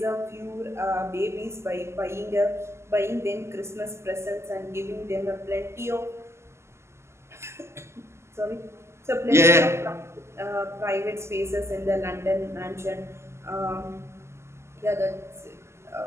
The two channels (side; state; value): left; late; 0.13 ms